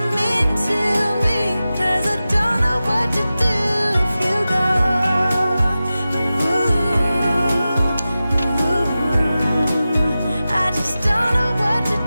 mean to me, 'cause I don't know what to do if you go. I just don't know what to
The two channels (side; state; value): both; inverted; correlation -0.94